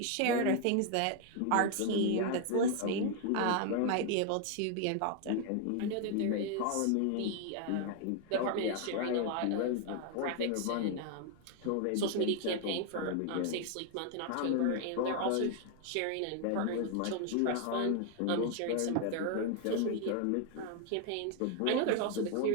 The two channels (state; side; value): different; both; correlation 0.00